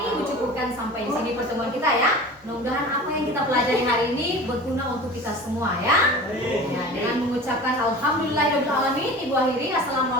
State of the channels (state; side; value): normal; both; correlation 0.37